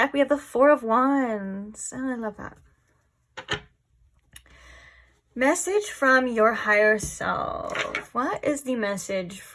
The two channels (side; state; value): both; identical; correlation 1.00